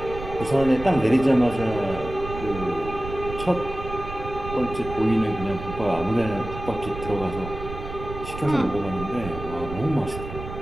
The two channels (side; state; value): right; noise; rumble, 10 dB below the sound